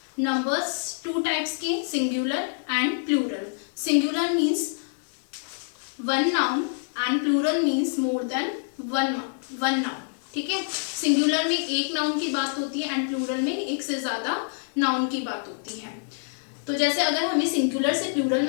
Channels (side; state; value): right; silent; digital silence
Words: Numbers two types के singular and plural. Singular means one noun and plural means more than one noun. ठीक है, singular में एक noun की बात होती है and plural में एक से ज्यादा नाउन की बात होती है. तो जैसे अगर हमें सिंगुलर से प्लूरल